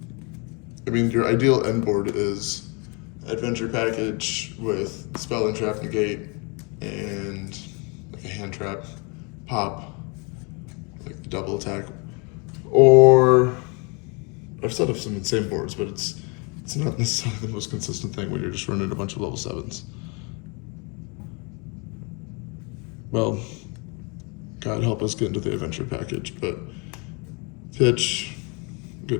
I mean, your ideal end board is adventure package with spell and trap negate and like a hand trap, pop, like double attack, or I've set up some insane boards, but it's not necessarily the most consistent thing when you're just running a bunch of level 7s. Well, God help us get into the adventure package, but pitch,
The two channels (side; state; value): right; quieter; 32.0 dB